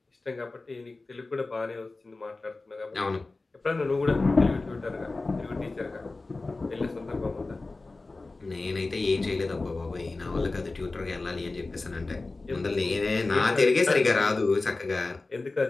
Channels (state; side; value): quieter; right; 3.4 dB